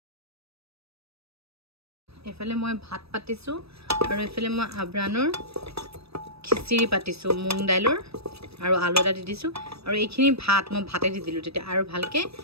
এইফালে মই ভাত পাতিছোঁ আৰু এইফালে মই আব্ৰানৰ খিচিৰি পাতিছোঁ মুগ দাইলৰ আৰু আলু এটা দি দিছোঁ আৰু এইখিনি ভাত মই ভাতে দি দিলোঁ তেতিয়া আৰু ভালকৈ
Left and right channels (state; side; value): late; left; 0.78 ms